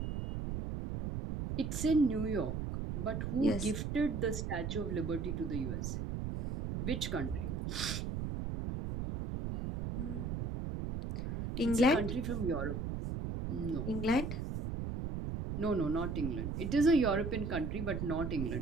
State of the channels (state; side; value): noise; right; rumble, 3 dB below the sound